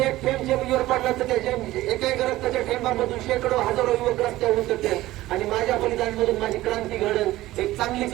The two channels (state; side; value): quieter; left; 16.5 dB